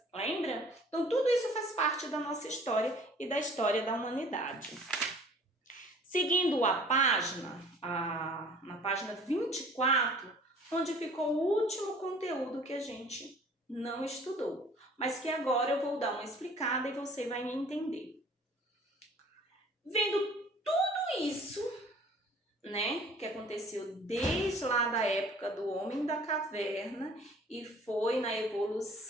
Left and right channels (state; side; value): normal; both; correlation 0.50